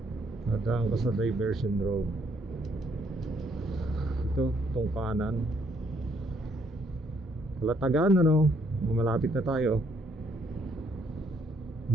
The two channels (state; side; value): normal; both; correlation 0.69